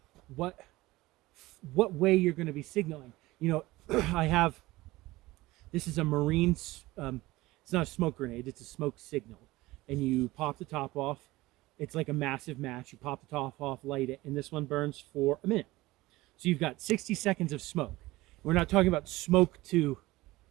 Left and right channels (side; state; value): left; quieter; 19.2 dB